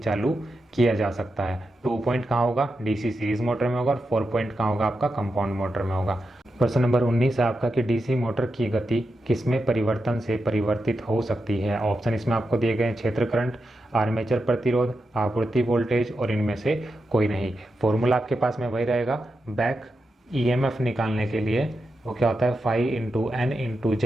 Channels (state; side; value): normal; both; correlation 0.88